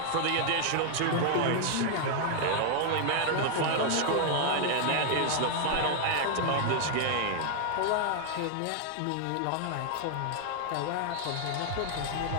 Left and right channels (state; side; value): different; both; correlation 0.00